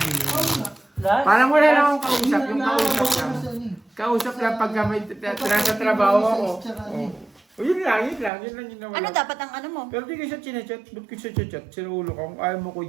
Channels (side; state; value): left; drops out; at 8.3 s